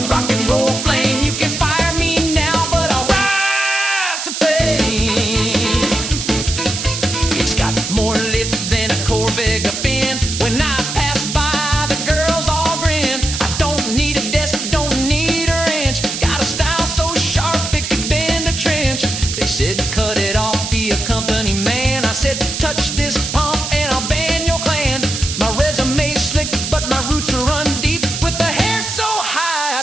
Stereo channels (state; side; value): noise; right; hiss, 4 dB below the sound